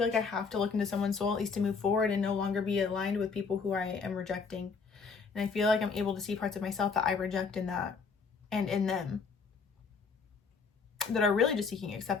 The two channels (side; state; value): right; quieter; 5.1 dB